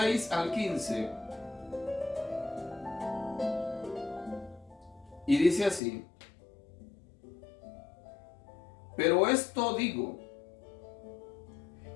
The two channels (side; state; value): right; drops out; at 5.8 s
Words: al 15. Y dice así: pero esto digo,